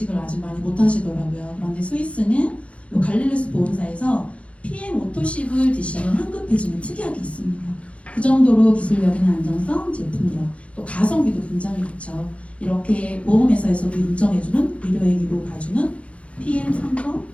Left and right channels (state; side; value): late; right; 0.063 ms